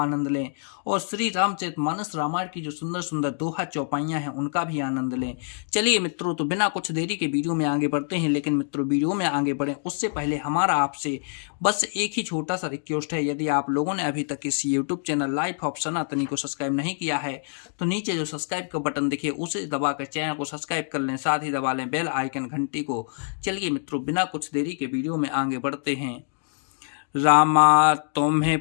लें और श्री रामचरितमानस रामायण की जो सुंदर सुंदर दोहा चौपाइयाँ हैं उनका भी आनंद लें। चलिए मित्रों, तो बिना कुछ देरी के वीडियो में आगे बढ़ते हैं। लेकिन मित्रों, वीडियो में आगे बढ़ें उससे पहले हमारा आपसे बस एक ही छोटा सा रिक्वेस्ट है। यदि आप लोगों ने अभी तक इस यूट्यूब चैनल लाइफ ऑफ सनातनी को सब्सक्राइब नहीं किया है तो नीचे जो सब्सक्राइब का बटन दिखे उसे दबाकर चैनल को सब्सक्राइब कर लें, साथ ही दबा लें बेल आइकन घंटी को। चलिए मित्रों, बिना कुछ देरी के वीडियो में आगे बढ़ते हैं। रामा तुम्हें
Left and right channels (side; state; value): right; silent; digital silence